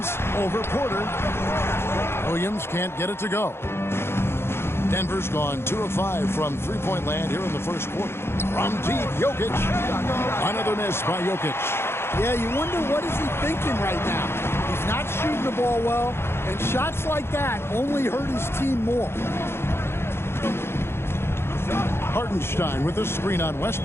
over Porter. Williams can't get it to go. Denver's gone 2 of 5 from three-point land here in the first quarter. From deep, Jokic. Another miss by Jokic. Yeah, you wonder what is he thinking right now. He's not shooting the ball well, and shots like that only hurt his team more. Hartenstein with the screen on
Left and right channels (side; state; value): right; late; 0.12 ms